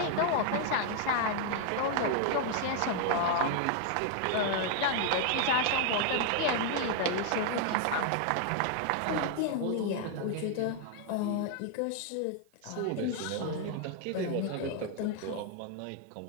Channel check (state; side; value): different; both; correlation 0.00